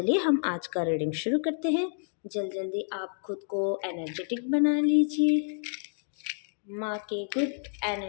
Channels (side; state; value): right; silent; digital silence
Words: हम आज का रीडिंग शुरू करते हैं। जल्दी आप खुद को एनर्जेटिक बना लीजिए। माँ के गुड